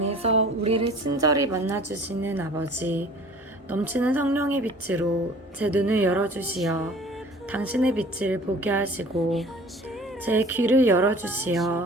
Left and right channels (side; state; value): both; normal; correlation 0.47